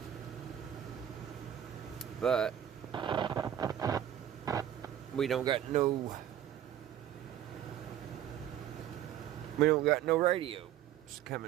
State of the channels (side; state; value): left; quieter; 10.9 dB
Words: But we don't got no radios